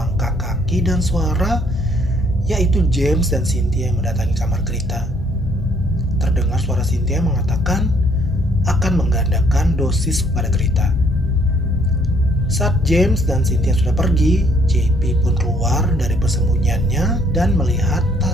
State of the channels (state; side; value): normal; both; correlation 0.65